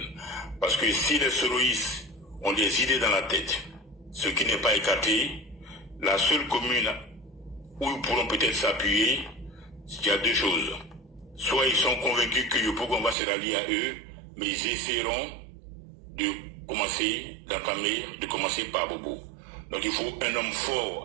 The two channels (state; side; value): drops out; left; at 13.2 s